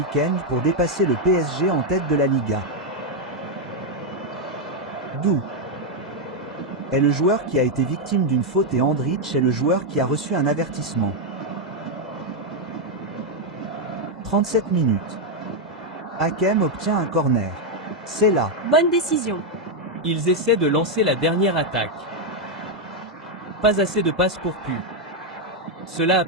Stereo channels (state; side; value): normal; both; correlation 0.01